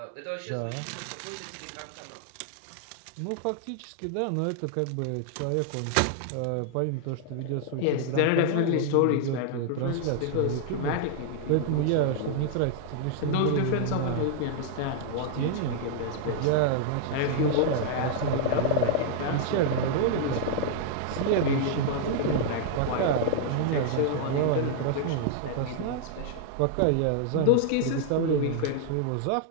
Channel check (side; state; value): both; different; correlation 0.00